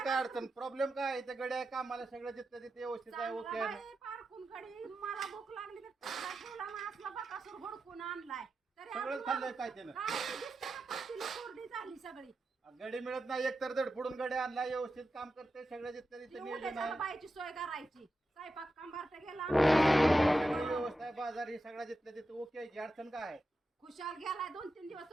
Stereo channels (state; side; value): normal; both; correlation 0.90